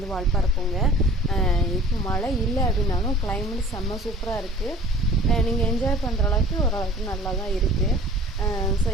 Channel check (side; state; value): both; normal; correlation 0.48